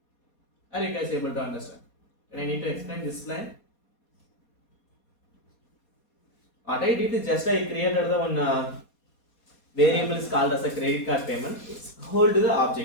Are you guys able to understand? Can I need to explain this line? What I did is just I created the one variable is called as a credit card payment. It's hold the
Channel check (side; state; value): right; late; 4.2 ms